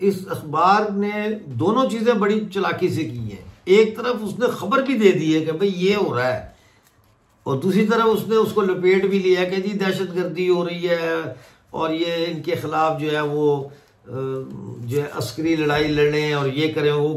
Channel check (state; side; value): identical; both; correlation 1.00